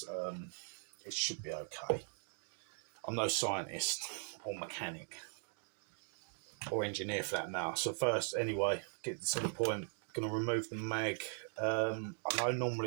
It should be okay. I'm no scientist or mechanic or engineer for that matter. So first, anyway, get to the point. Going to remove the mag. I know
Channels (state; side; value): silent; left; 51 dB below the other